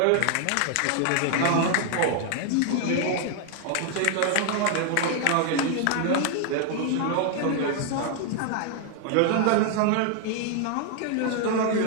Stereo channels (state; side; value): different; both; correlation 0.00